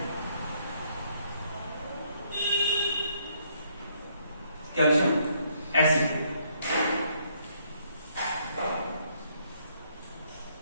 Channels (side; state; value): both; inverted; correlation -0.69